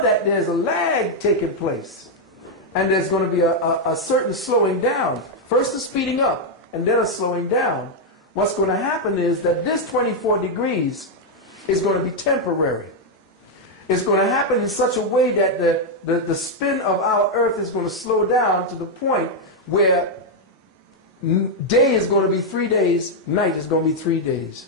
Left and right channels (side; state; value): both; normal; correlation 0.00